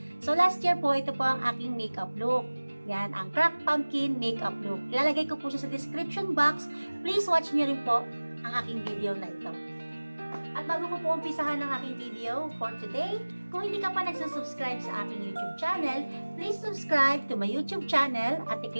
So last year po ito po ang aking makeup look. Yan ang cracked pumpkin makeup look. Ilalagay ko po siya sa description box. Please watch niyo rin po ang aking video na ito. At bago ko po umpisahan ang aking video for today, kung hindi ka pa nagsusubscribe sa aking YouTube channel, please subscribe to my YouTube channel at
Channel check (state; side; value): inverted; both; correlation -1.00